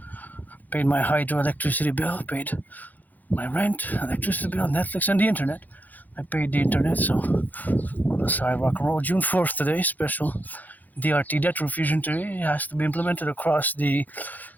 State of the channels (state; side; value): late; right; 0.082 ms